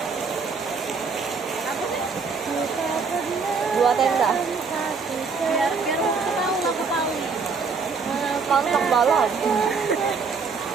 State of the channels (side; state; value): left; quieter; 5.0 dB